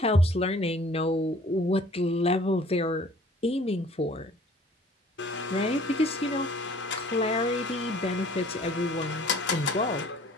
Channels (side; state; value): both; normal; correlation 0.52